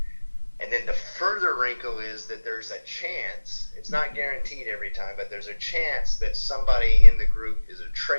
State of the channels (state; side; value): inverted; both; correlation -1.00